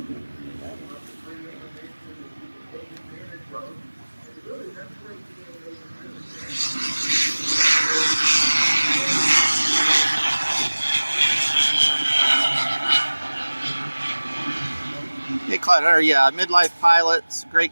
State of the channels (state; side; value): inverted; both; correlation -1.00